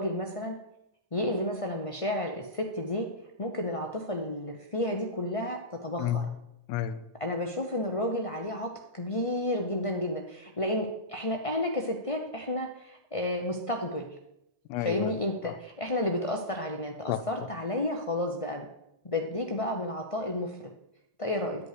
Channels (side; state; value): right; late; 1.5 ms